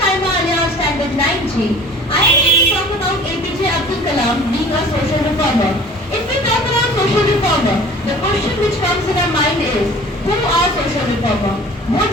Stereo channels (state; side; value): normal; both; correlation 0.46